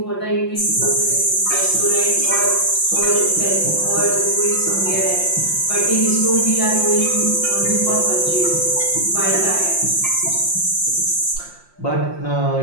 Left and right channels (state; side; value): late; right; 5.7 ms